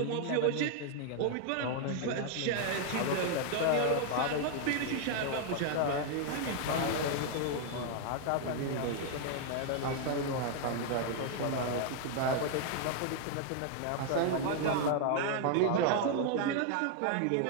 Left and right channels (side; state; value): both; different; correlation 0.00